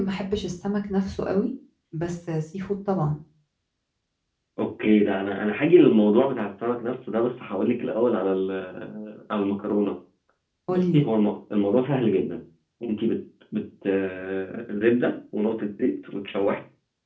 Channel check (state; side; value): identical; both; correlation 1.00